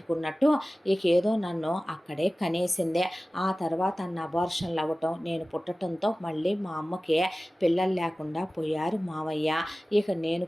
ఇక ఏదో నన్ను అక్కడే కనేసిందే. ఆ తర్వాత అన్న అబార్షన్లు అవ్వటం, నేను పుట్టడంతో మళ్ళీ మా అమ్మకి పిల్లలు లేకుండా పోయారు మావయ్య. ఇక నేను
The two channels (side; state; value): both; normal; correlation 0.97